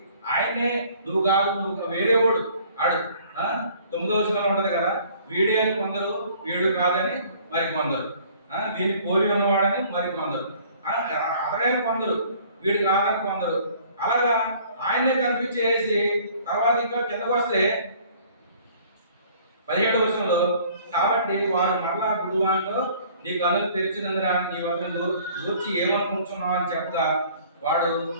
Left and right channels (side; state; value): both; inverted; correlation -0.55